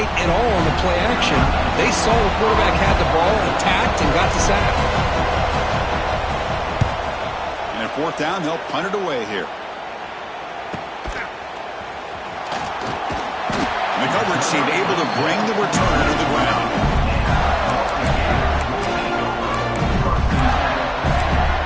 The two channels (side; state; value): both; identical; correlation 1.00